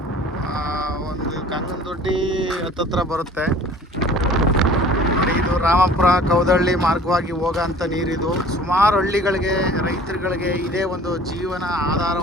ಒಂದು ಕಂಗನದೊಡ್ಡಿ ಹತ್ತತ್ರ ಬರುತ್ತೆ. ನೋಡಿ ಇದು ರಾಮಪುರ ಕೌದಳ್ಳಿ ಮಾರ್ಗವಾಗಿ ಹೋಗೋಂಥ ನೀರಿದು. ಸುಮಾರು ಹಳ್ಳಿಗಳಿಗೆ ರೈತರುಗಳಿಗೆ ಇದೇ ಒಂದು ಜೀವನ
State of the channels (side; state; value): both; normal; correlation 0.48